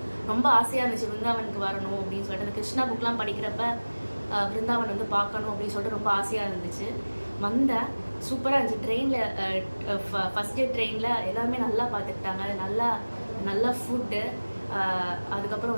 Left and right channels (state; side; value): inverted; both; correlation -1.00